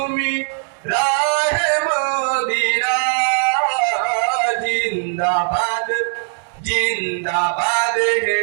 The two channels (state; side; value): silent; left; digital silence